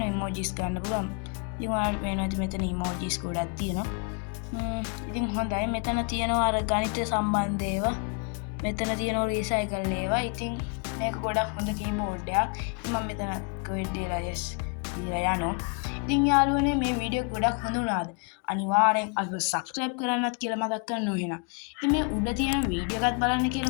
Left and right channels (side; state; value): right; quieter; 37.3 dB